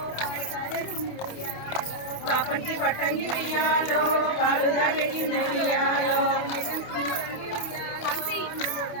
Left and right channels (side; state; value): right; late; 28 ms